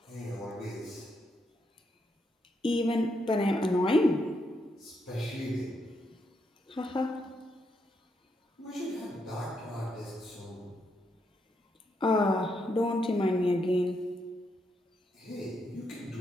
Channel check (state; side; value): normal; both; correlation 0.79